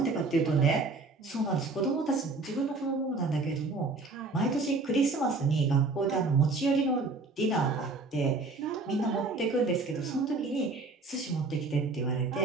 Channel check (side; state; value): left; quieter; 3.7 dB